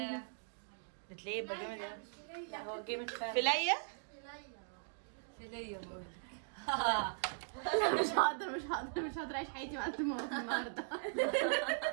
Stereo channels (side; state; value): left; silent; digital silence